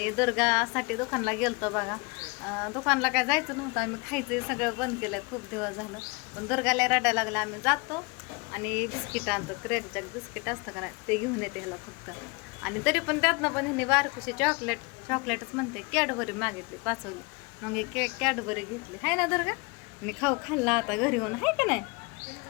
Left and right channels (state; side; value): quieter; right; 28.9 dB